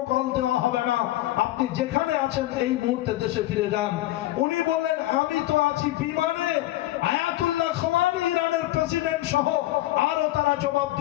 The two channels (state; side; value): quieter; right; 16.2 dB